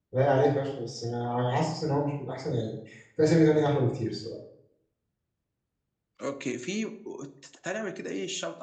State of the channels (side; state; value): both; identical; correlation 1.00